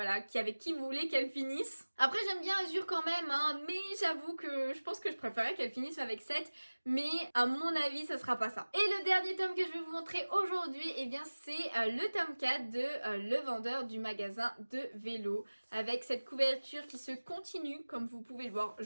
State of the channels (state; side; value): inverted; both; correlation -1.00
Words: avec qui vous voulez qu'elle finisse. Après j'aime bien Azur quand même, hein, mais j'avoue que je pense que je préférais qu'elle finisse avec 7, mais à mon avis ça sera pas ça. Et le dernier tome que je vais vous montrer aujourd'hui, eh bien c'est le tome 4 de Le Vendeur du magasin de vélo, avec cette couverture qui se continue, comme vous pouvez le voir.